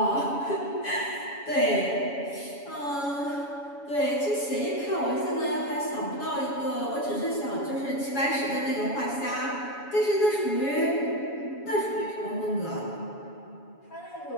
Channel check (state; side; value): late; right; 7.1 ms